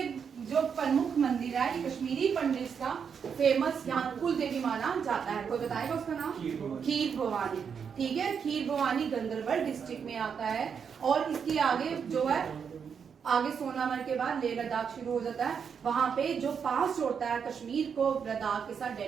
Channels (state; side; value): quieter; left; 6.8 dB